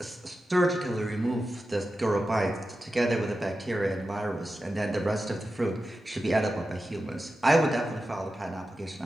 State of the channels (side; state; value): both; normal; correlation 0.92